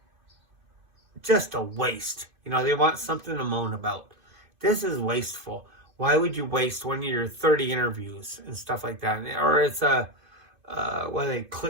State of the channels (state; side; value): late; left; 2.6 ms